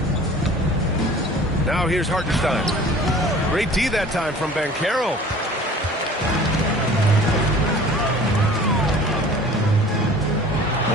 Now here's Hartenstein. Great D that time from Banchero.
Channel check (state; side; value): normal; both; correlation 0.46